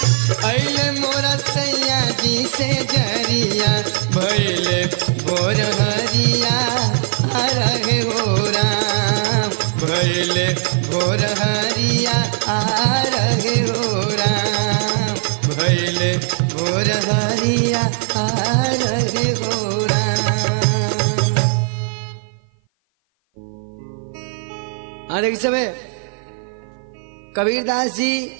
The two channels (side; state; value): left; silent; 55 dB below the other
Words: अइले मोरा सैया जी से जरिया भइले भोर हरिया रहे हो राम भइले भोर हरिया रहे हो राम भइले भोर हरिया रहे हो राम। हाँ देखिए सबे कबीरदास जी